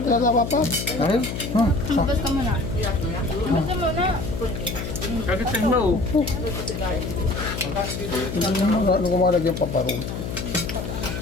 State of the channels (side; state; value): left; noise; hum, 5 dB below the sound